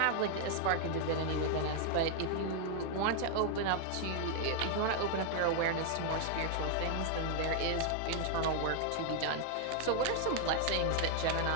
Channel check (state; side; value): different; both; correlation 0.00